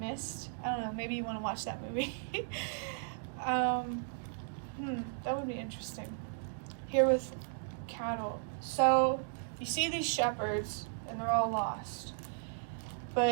I don't know, maybe you want to watch that movie. That would be interesting. Here with cattle. So, you see these shepherds, and they're all lost.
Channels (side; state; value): left; silent; digital silence